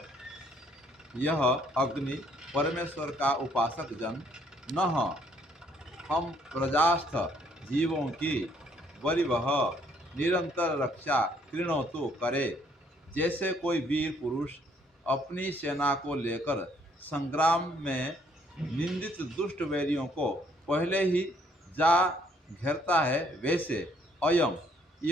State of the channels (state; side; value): normal; both; correlation 0.66